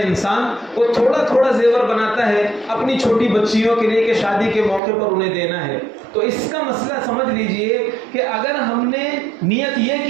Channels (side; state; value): left; drops out; at 4.8 s